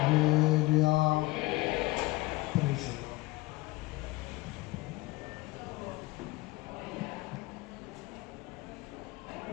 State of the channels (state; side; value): quieter; right; 20.7 dB